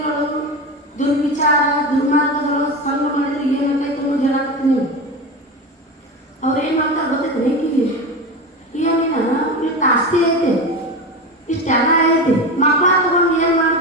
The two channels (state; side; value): normal; both; correlation 0.23